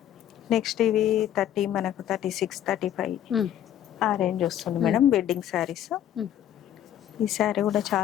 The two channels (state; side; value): quieter; right; 11.1 dB